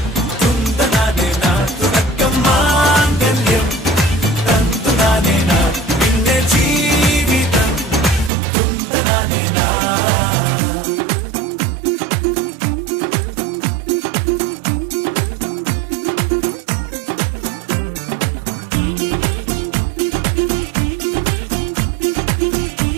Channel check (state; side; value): drops out; left; at 8.3 s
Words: തുന്തനാനേന തുടക്കം മാംഗല്യം തന്തുനാനേന പിന്നെ ജീവിതം തുന്തനാനേന.